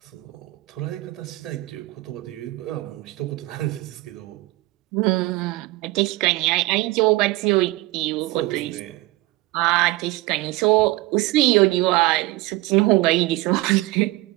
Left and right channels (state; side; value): quieter; left; 19.5 dB